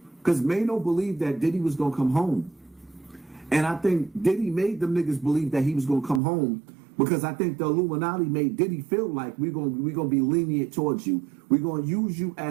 Because Mano believed that Diddy was gonna come home. And I think Diddy made them niggas believe that he was gonna come home, because I think the Illuminati made Diddy feel like we're gonna be lenient towards you. We're gonna use you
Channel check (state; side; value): drops out; left; at 6.2 s